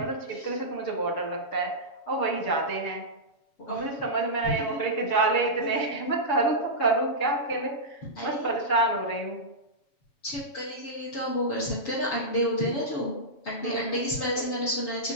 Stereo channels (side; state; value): right; late; 7.2 ms